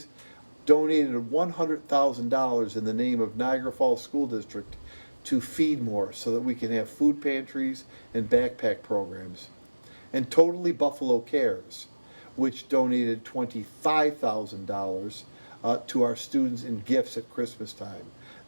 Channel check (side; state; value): both; inverted; correlation -1.00